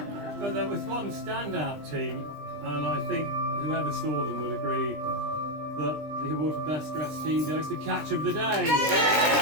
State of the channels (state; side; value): late; left; 20 ms